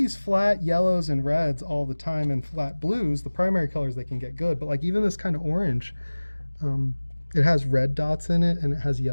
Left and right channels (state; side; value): inverted; both; correlation -1.00